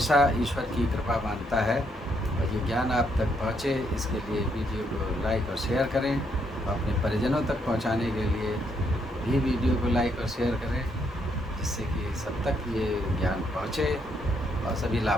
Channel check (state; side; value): normal; both; correlation 0.74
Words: ईश्वर की कृपा मानता है। और ये ज्ञान आप तक पहुँचे, इसके लिए वीडियो को लाइक और शेयर करें, और अपने परिजनों तक पहुँचाने के लिए भी वीडियो को लाइक और शेयर करें, जिससे कि सब तक ये ज्ञान पहुँचे और सभी